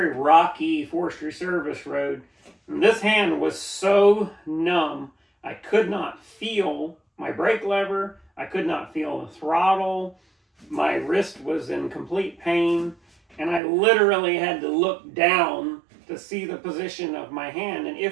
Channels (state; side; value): drops out; left; at 13.6 s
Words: rocky forestry service road, and this hand was so numb, I could not feel my brake lever, I could not feel the throttle, my wrist was in complete pain, and I literally had to look down to see the position of my hand and